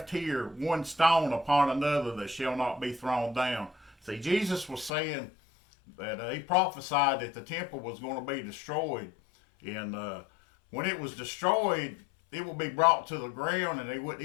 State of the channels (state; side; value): drops out; right; at 4.9 s